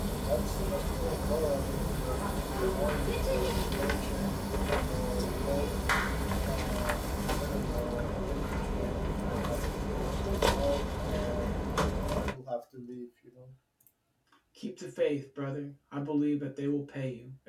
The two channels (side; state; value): both; identical; correlation 1.00